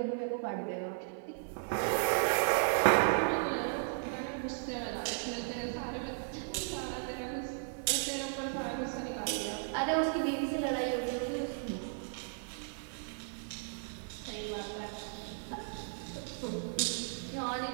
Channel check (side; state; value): left; silent; 54 dB below the other